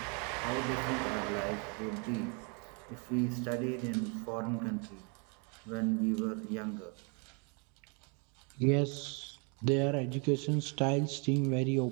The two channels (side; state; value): left; quieter; 35.7 dB